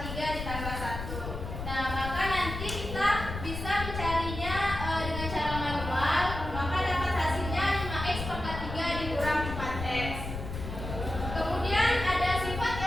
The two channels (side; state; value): left; noise; rumble, 7 dB below the sound